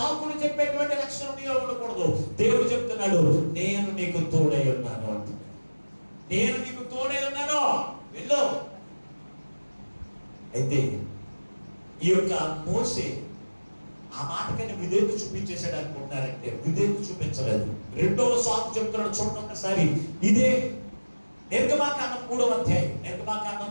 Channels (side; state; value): both; inverted; correlation -1.00